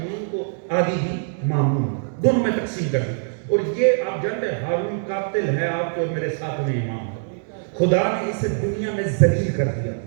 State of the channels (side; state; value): left; silent; digital silence